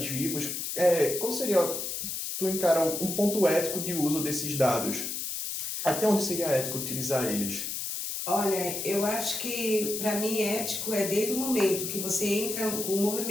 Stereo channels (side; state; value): left; noise; hiss, 4 dB below the sound